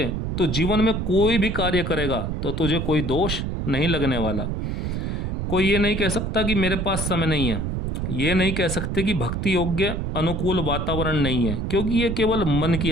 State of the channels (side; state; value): right; noise; rumble, 2 dB below the sound